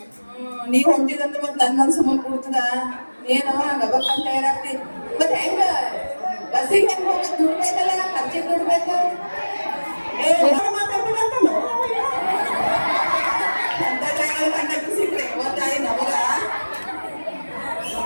ನೀವ್ ಹೊಂದಿದಂದ್ರೆ ಮತ್ತೆ ನನ್ ಮನ್ಸು ಮುಂದೆ ಕೂಡ್ತದ ಏನೋ ಗಬಕ್ಕಂತ ಇರಾಕ್ತಿ ಮತ್ತೆ ಹೆಂಗ ಬಸ್ಸಿಗೆ ಹೆಂಗ್ ಹೋಗ ದುಡ್ಡು ಬೇಕಲ್ಲ ಖರ್ಚಿಗೆ ದುಡ್ಡು ಬೇಕು ಮಾತಾಡ್ಬೇಕಂತ ಅಂತ ಡ್ರೈವರ್ ಕಂಡಕ್ಟರ್ ಸಿಕ್ಕ್ರೆ ಗೊತ್ತಾಯಿ ನಮಗ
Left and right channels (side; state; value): both; inverted; correlation -1.00